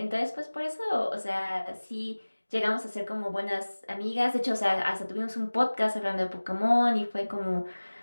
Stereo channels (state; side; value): inverted; both; correlation -1.00